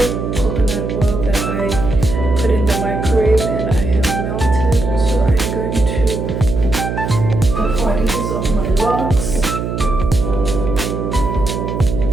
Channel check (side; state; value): right; noise; hum, 3 dB below the sound